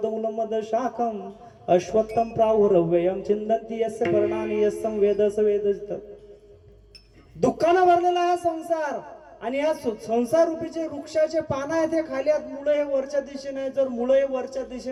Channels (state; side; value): identical; both; correlation 1.00